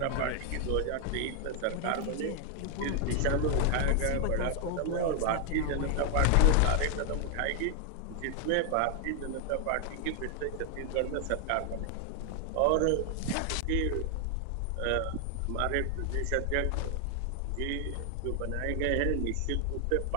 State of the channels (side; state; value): both; different; correlation 0.00